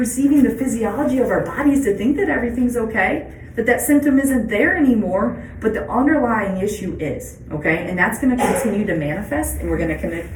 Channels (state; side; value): identical; both; correlation 1.00